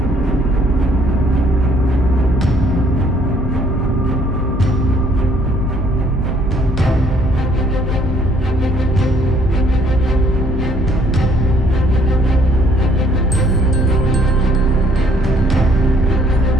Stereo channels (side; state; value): both; normal; correlation 0.63